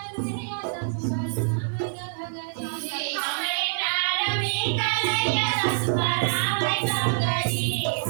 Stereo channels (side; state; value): left; silent; 58 dB below the other